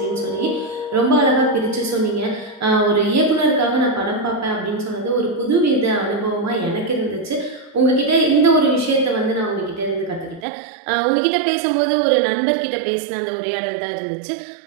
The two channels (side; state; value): left; drops out; at 10.5 s